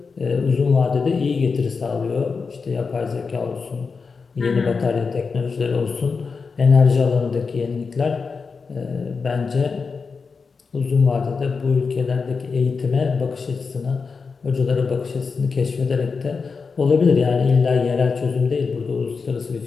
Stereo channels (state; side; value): quieter; right; 4.9 dB